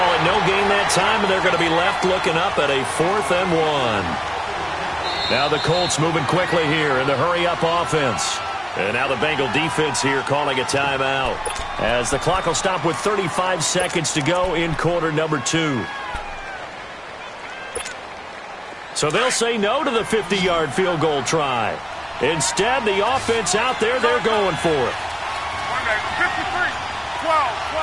it no gain that time, and they're going to be left looking up at a 4th and 1. Now the Colts moving quickly here in the hurry-up offense. And now the Bengal defense here calling a timeout, as the clock will stop with 35 seconds to go in quarter number 2. So they'll say no to the 50-yard field goal try. Instead, the offense out there, they're going for it. 53, 12.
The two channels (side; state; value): both; identical; correlation 1.00